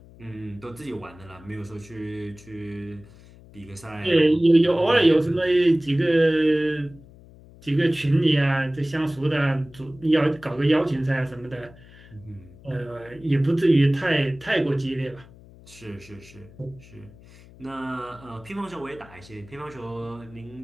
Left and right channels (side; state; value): left; noise; hum, 22 dB below the sound